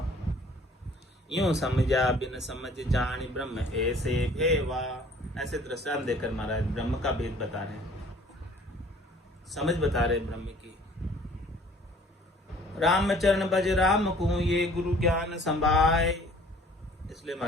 यूं समझा बिन समझ जान ब्रह्म ऐसे भेवा। ऐसे दृष्टांत देकर महाराज ब्रह्म का भेद बता रहे हैं, समझ बता रहे ब्रह्म की। राम चरण बज राम को, ये गुरु ज्ञान संभाय। इसलिए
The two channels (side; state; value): both; normal; correlation 0.53